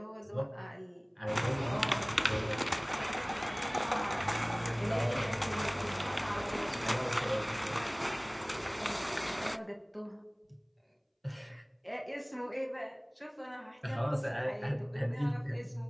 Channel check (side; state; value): both; identical; correlation 1.00